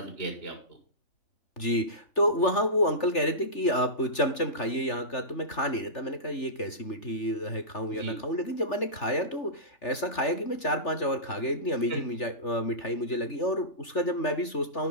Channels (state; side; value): late; right; 3.4 ms